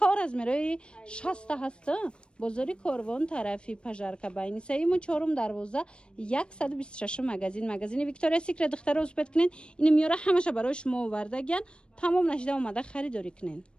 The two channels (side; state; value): right; late; 0.055 ms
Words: رزمیروی 60 هست بزرگی کاروان طرفی پژارکا باینی سیم و چهارم دروازه 126 مگزین ویکتوریا سیکرت دختر رو اسپت کنین این میاره همشه برای شما آوردگن تمام نشده اومده خریداری کنین